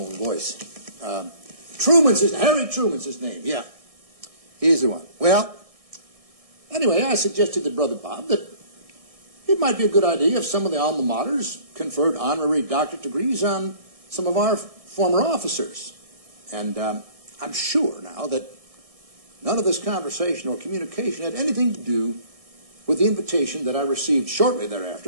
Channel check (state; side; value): late; left; 1.6 ms